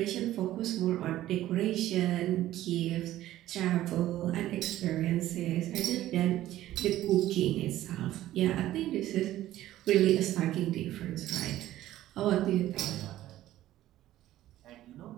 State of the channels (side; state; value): left; quieter; 14.2 dB